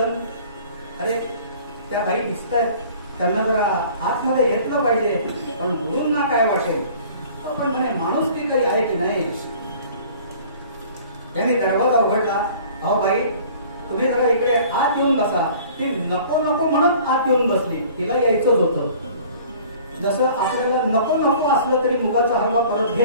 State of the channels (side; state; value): both; inverted; correlation -0.49